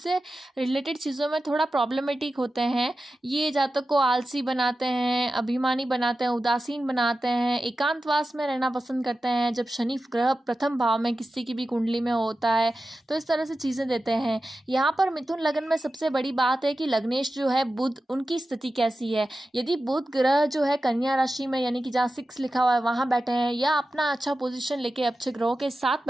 रिलेटेड चीज़ों में थोड़ा प्रॉब्लमेटिक होते हैं। ये जातक को आलसी बनाते हैं, अभिमानी बनाते हैं, उदासीन बनाते हैं, एकांतवास में रहना पसंद करते हैं। जब शनि ग्रह प्रथम भाव में किसी की भी कुंडली में होता है तो इस तरह से चीज़ें देते हैं। यहाँ पर मिथुन लगन में सबसे बड़ी बात है कि लग्नेश जो है बुध, उनकी स्थिति कैसी है। यदि बुध ग्रह जो है कन्या राशि में, यानी कि जहाँ 6 लिखा हुआ है वहाँ बैठे हैं, या अपना अच्छा पोजीशन लेके अच्छे ग्रहों के साथ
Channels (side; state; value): both; normal; correlation 0.93